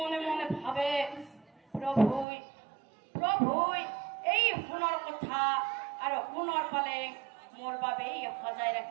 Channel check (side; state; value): left; drops out; at 2.2 s